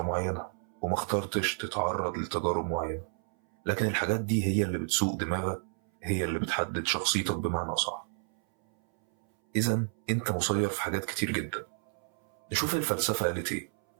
معينة، وما اخترتش تتعرض لتجارب معينة، لكن الحاجات دي هي اللي بتسوق دماغك، هي اللي بتحدد شخصيتك بمعنى صح. إذن انت مسير في حاجات كتير جدا. نشوف الفلسفة قالت ايه.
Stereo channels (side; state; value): left; silent; 57 dB below the other